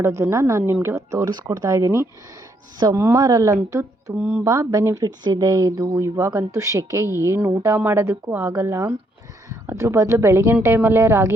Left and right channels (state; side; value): normal; both; correlation 0.73